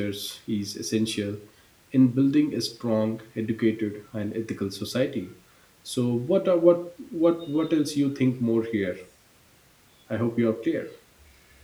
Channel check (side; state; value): both; identical; correlation 1.00